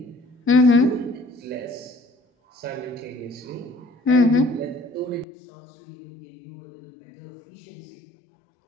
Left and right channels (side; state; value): right; drops out; at 5.2 s